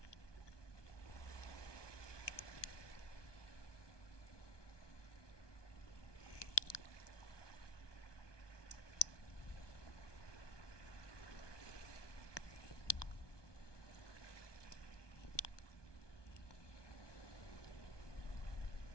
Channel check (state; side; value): late; right; 1.2 ms